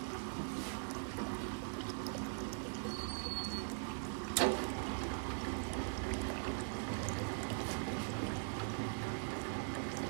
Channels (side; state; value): left; silent; digital silence